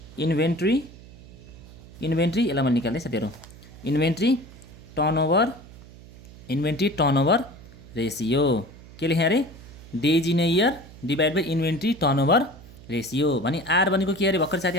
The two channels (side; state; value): right; noise; hum, 19 dB below the sound